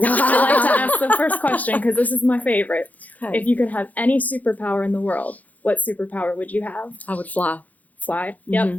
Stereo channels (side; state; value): right; late; 0.078 ms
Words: like to ask the first question because this is my favorite. Okay. If you could have any superpower in the world, what superpower would you have? I would fly. Fly. Yep.